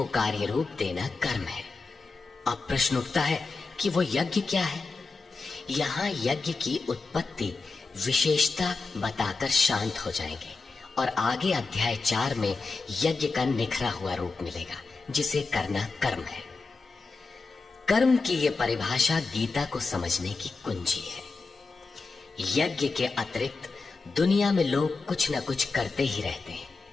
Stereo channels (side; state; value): right; quieter; 4.1 dB